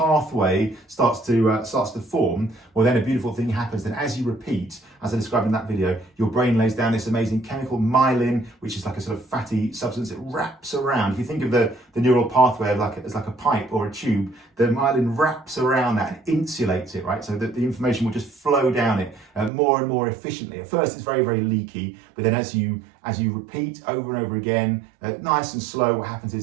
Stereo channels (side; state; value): left; drops out; at 19.5 s